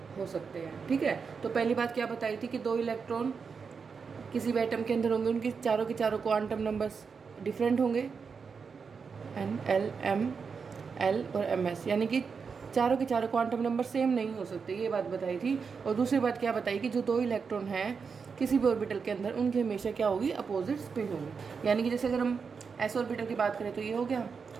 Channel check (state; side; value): quieter; left; 5.6 dB